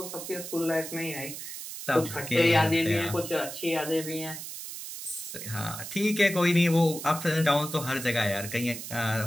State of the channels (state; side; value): noise; right; hiss, 9 dB below the sound